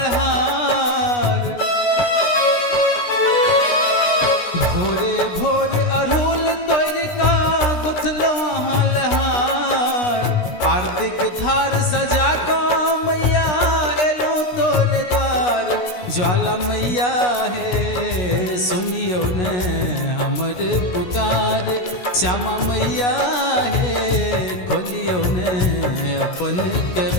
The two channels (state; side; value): late; right; 16 ms